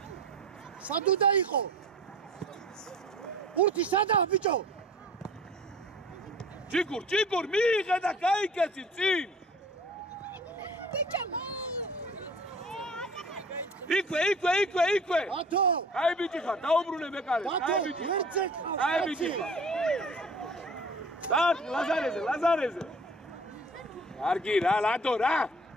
უნდა იყო? ურთი სადაა ბიჭო? ჭიკურ, მიიღე და გაიკეცი წინ. ბიჭო! იქვე. ათო! აი ბიჭი ხარ, დაუბრუნე მეკარე. ათო, ვერცე ყავს. აი ბიჭი. დათ ლაზარეზე. არგი რა, ლადო რა.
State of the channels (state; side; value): normal; both; correlation 0.45